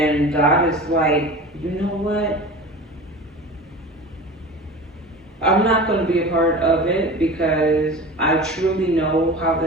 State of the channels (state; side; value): normal; both; correlation 0.35